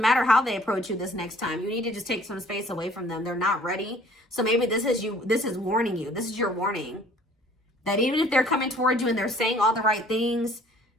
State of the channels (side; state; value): both; normal; correlation 0.55